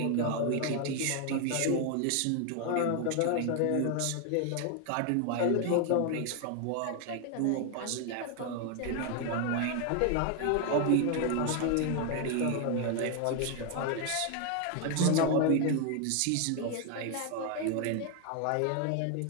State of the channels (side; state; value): both; different; correlation 0.01